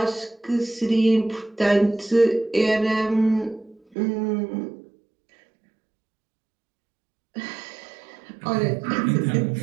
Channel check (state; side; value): drops out; left; at 4.0 s